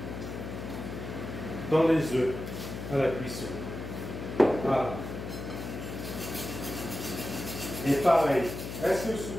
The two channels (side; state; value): left; noise; hum, 8 dB below the sound